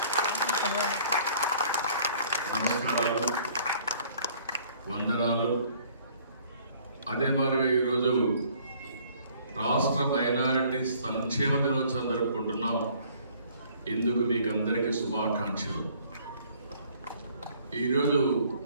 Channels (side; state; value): both; inverted; correlation -0.58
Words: నమస్కారాలు, వందనాలు. అదే మరి ఈరోజు రాష్ట్ర మైనారిటీ సంక్షేమ దినోత్సవం జరుపుకుంటున్నాం. ఇందుకు మీకు అందరికీ శుభాకాంక్షలు. ఈరోజు